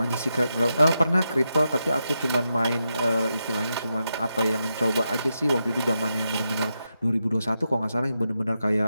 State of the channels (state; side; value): inverted; both; correlation -0.87